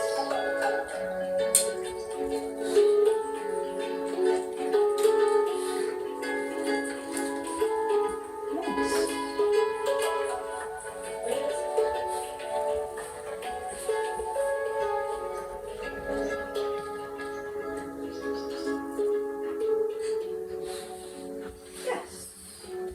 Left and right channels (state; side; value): identical; both; correlation 1.00